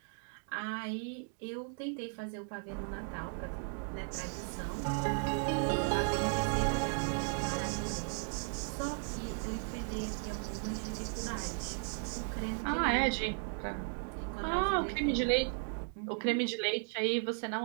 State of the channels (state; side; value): silent; left; 54 dB below the other